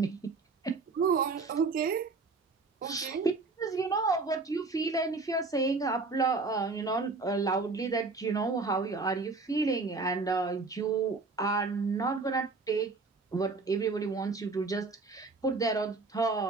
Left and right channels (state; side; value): quieter; left; 3.9 dB